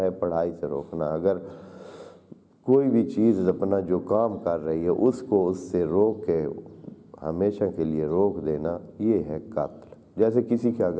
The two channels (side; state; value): both; identical; correlation 1.00